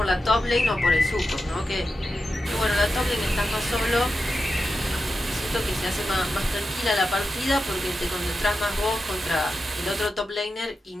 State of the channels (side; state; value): both; normal; correlation 0.90